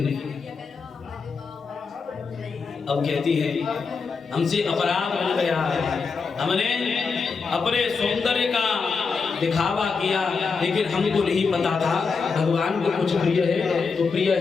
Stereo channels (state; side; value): quieter; right; 5.0 dB